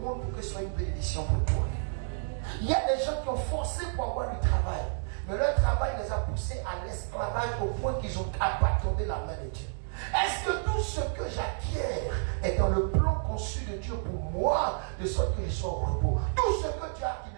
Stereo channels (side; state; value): left; silent; digital silence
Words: pour que ce soit une bénédiction pour toi. Il y a des gens qui ont forcé pour avoir du travail, mais leur travail les a poussés à l'esclavage au point qu'ils ont abandonné la main de Dieu. Est-ce que tout ce que j'acquiers est dans le plan conçu de Dieu pour moi, de sorte que je sois au repos? Tout ce que tu as qui